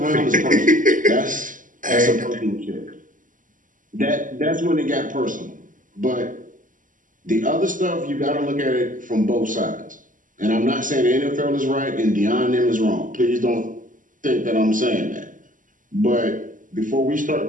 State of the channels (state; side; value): late; left; 0.38 ms